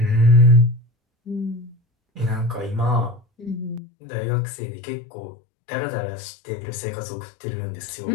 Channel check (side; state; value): right; drops out; at 3.8 s